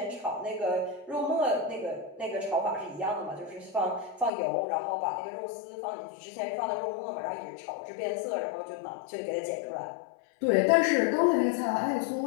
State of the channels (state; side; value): drops out; right; at 4.3 s